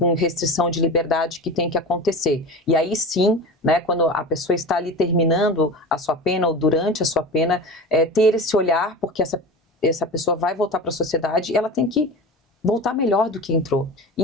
restrição de liberdade que tem que acontecer. E aí sim, né, quando a pessoa está ali terminando a sua pena ou durante a sua pena, ter esse olhar, porque essa pessoa vai voltar para a sociedade e ela tem que voltar melhor do que entrou. E,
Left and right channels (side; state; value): both; normal; correlation 0.30